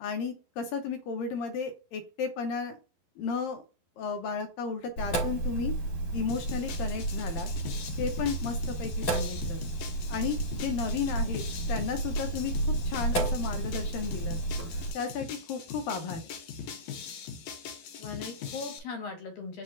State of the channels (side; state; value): right; late; 11 ms